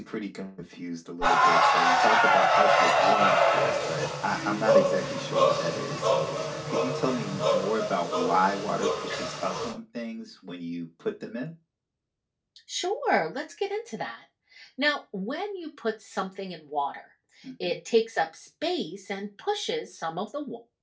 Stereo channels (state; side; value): identical; both; correlation 1.00